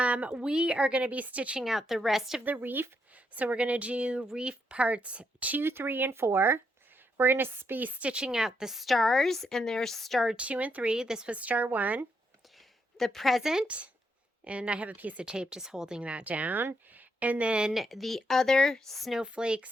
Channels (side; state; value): both; normal; correlation 0.78